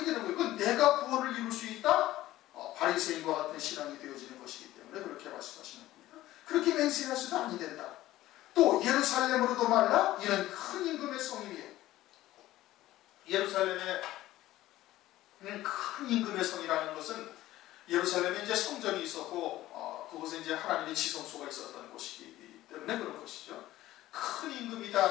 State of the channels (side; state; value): right; quieter; 15.4 dB